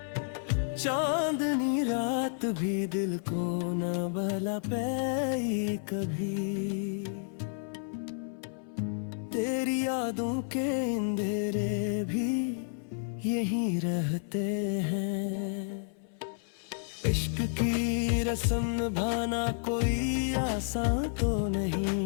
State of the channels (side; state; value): right; silent; 57 dB below the other